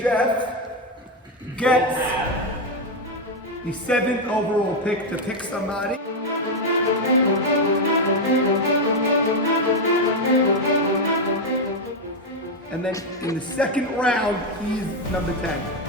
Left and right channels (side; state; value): both; normal; correlation 0.05